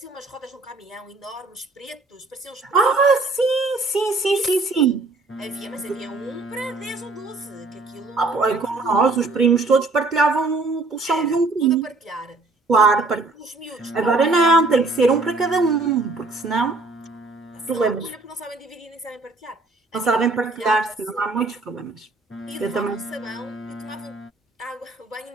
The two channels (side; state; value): left; quieter; 3.3 dB